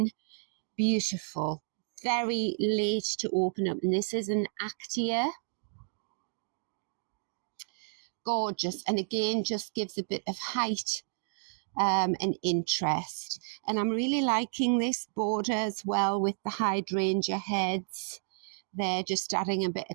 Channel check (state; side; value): silent; left; digital silence